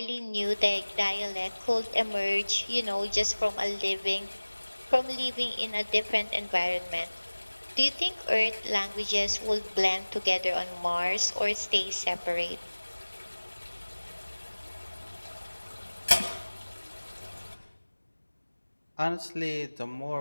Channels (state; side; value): inverted; both; correlation -1.00